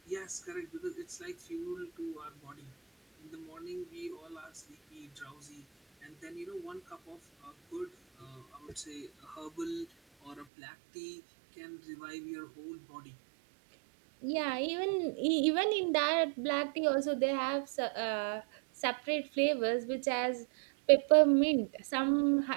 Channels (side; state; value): left; drops out; at 10.5 s